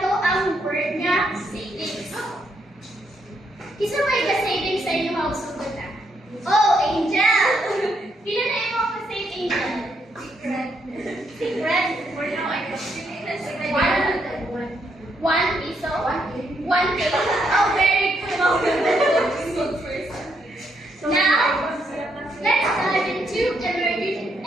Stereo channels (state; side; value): normal; both; correlation 0.76